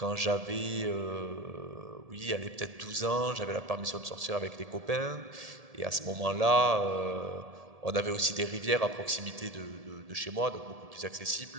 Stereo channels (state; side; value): late; left; 1.7 ms